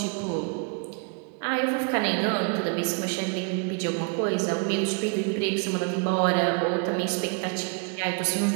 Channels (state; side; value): quieter; left; 36.7 dB